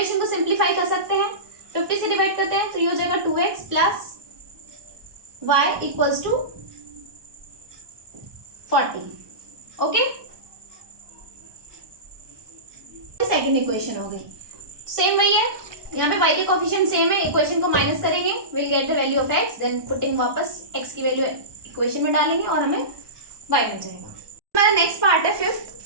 को सिंप्लीफाई कर सकते हैं, 50 से डिवाइड करते हैं तो ये हो जाएगा 2x + y = 40। Okay, second equation हो गई, सेम वही है। यहाँ पे y के कोफिशिएंट सेम है, इक्वेशन को माइनस करेंगे, will get the value of x, then putting वापस x की वैल्यू इक्वेशन में डालेंगे और हमें y मिल जाएगा। हमारा नेक्स्ट पार्ट है fifth,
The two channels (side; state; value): left; late; 1.2 ms